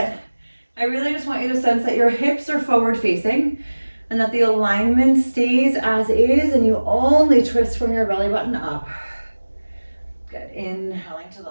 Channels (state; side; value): inverted; both; correlation -1.00